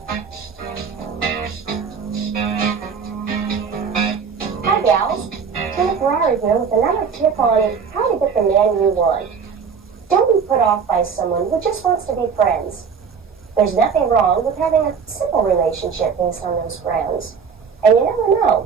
Hi gals, Tina Ferrari here with another tip on how to get the man you want. Don't be put off by someone who just wants to be friends. There's nothing wrong with having a simple relationship based on those friends. And you never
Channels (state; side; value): quieter; left; 6.1 dB